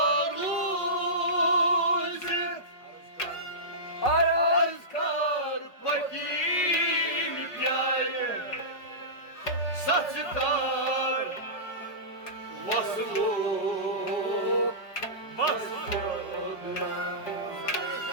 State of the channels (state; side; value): late; right; 5.0 ms